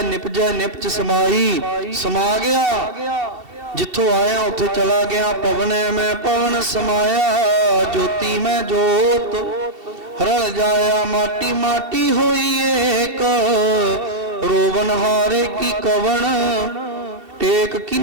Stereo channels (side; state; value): left; late; 2.7 ms